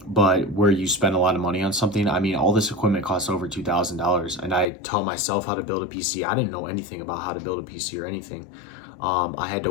But where you spend a lot of money on something. I mean, all this equipment costs over $2,000, and I taught myself how to build a PC. I didn't know anything about how to build a PC or anything. I had to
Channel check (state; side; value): drops out; right; at 4.7 s